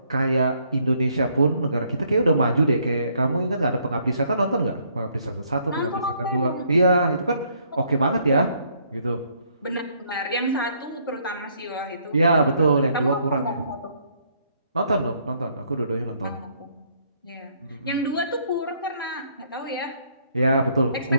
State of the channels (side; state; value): both; inverted; correlation -0.68